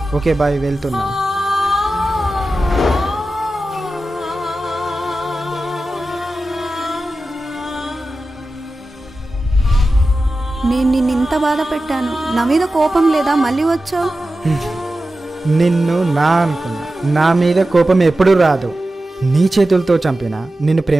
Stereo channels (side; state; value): both; normal; correlation 0.93